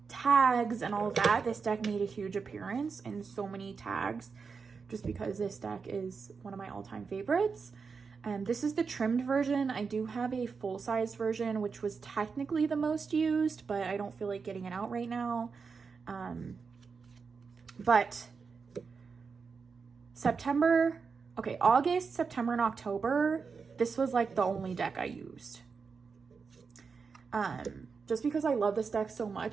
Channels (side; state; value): left; quieter; 5.3 dB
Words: tags and all of that. This deck made a huge appearance in so many tags just because this deck is one of my all-time favorites. This is the trimmed version. I do have a full-size version, which was technically the most used, but I don't feel like getting it out right now. But August, September, and October, this was like the only deck I used. just because I love this deck so